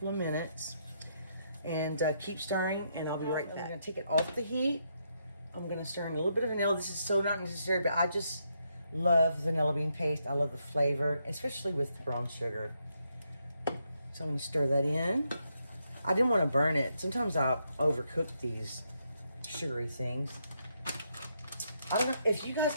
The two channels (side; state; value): both; inverted; correlation -0.78